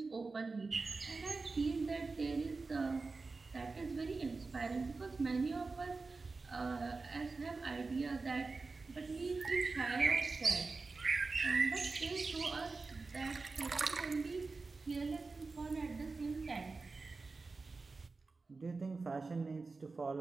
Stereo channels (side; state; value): left; quieter; 4.0 dB